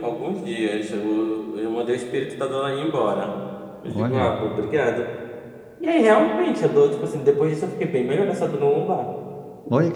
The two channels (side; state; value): both; identical; correlation 1.00